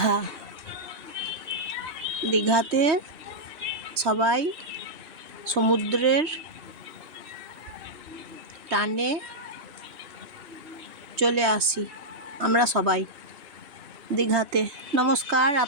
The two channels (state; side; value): late; left; 3.0 ms